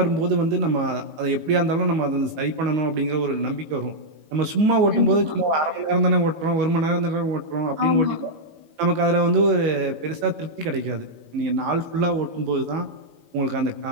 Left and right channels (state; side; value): late; left; 18 ms